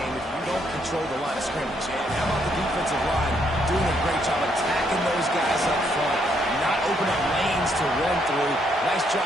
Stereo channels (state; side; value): normal; both; correlation 0.73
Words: if you don't control the line of scrimmage. And how about the defensive line doing a great job attacking those guys up front, not opening up lanes to run through. Nice job